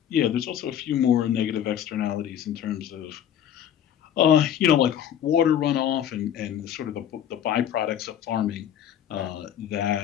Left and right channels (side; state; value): right; quieter; 9.9 dB